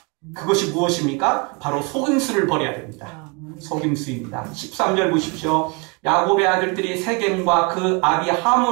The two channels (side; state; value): left; quieter; 30.9 dB